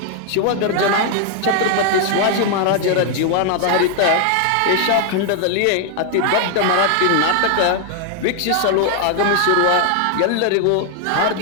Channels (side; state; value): both; different; correlation 0.00